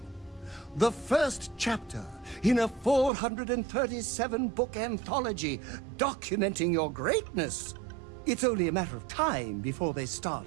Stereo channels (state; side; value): drops out; left; at 3.1 s